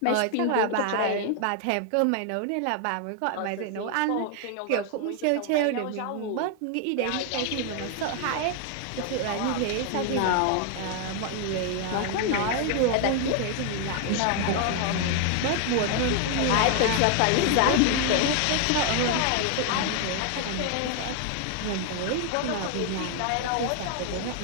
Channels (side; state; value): both; different; correlation 0.00